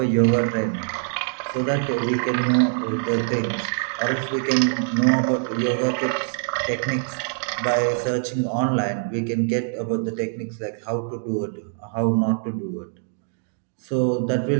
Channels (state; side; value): silent; left; digital silence